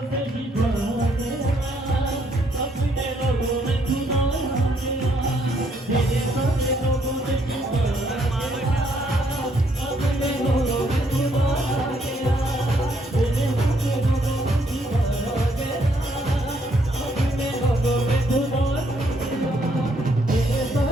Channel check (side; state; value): both; normal; correlation 0.71